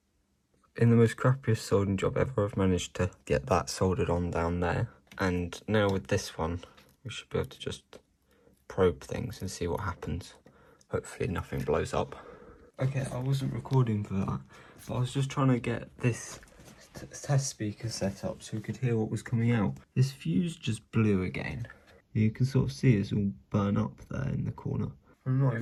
In the most crappiest soldering job ever, I've managed to get that soldered on down there. And now with this one, we should be able to just probe things and see what happens. Hopefully nothing blows up. Okay, I wasn't recording for that, but I was just trying to get this test speaker set up so we could hear what was coming out. This fuse just blew again. You can sort of see it's all burn up there in the corner. I'm not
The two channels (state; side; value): identical; both; correlation 1.00